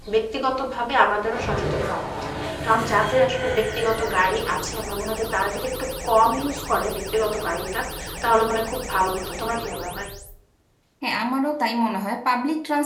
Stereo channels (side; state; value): both; identical; correlation 1.00